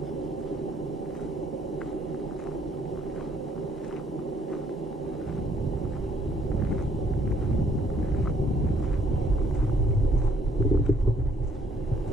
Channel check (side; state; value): both; normal; correlation 0.65